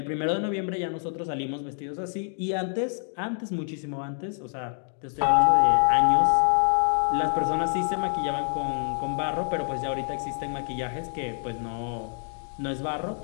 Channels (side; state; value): right; silent; 58 dB below the other